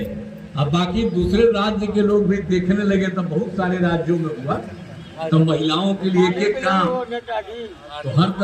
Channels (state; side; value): identical; both; correlation 1.00